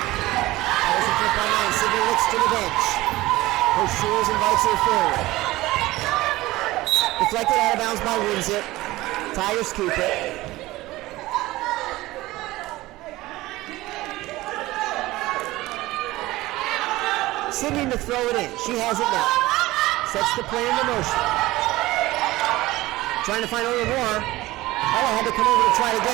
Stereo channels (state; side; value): quieter; left; 18.3 dB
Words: Tigers in front by 9. Sydney looks to the bench. Coach Jules invites her forward. Deflected out of bounds by Winzip. Tigers keep it. Sydney to throw it in. She has it now. Sets the play into motion. Trying to find a little more. Ella had to come over to try to